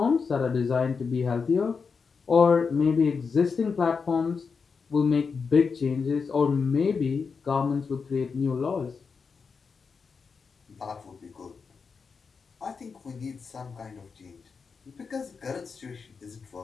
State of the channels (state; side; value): quieter; right; 5.3 dB